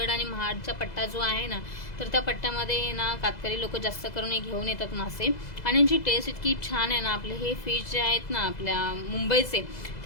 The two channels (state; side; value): late; right; 2.0 ms